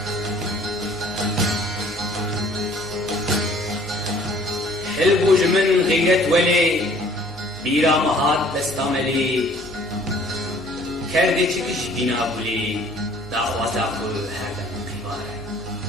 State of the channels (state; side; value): normal; both; correlation 0.55